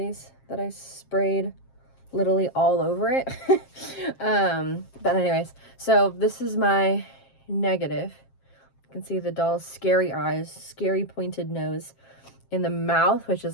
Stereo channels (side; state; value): right; late; 7.5 ms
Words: that I sprayed literally all over it. But anyways, so this is my negative. You can see the doll's scary eyes, scary pointed nose in the mouth, which